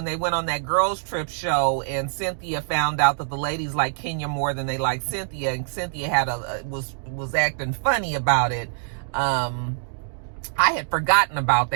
they went on that girls trip show, and Cynthia found out that the ladies like Kenya more than they like Cynthia, and Cynthia was acting funny about it. I had forgotten about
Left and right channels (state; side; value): silent; left; digital silence